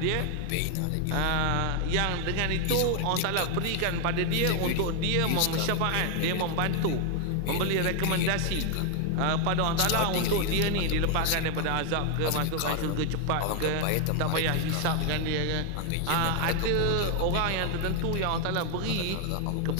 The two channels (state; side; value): different; both; correlation 0.00